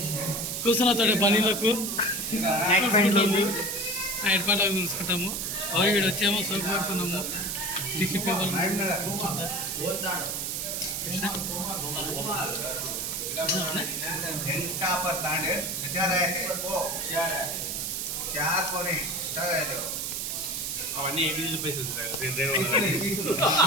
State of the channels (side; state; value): right; noise; hiss, 2 dB below the sound